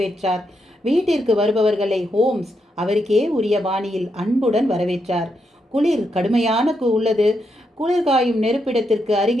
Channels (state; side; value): normal; both; correlation 0.81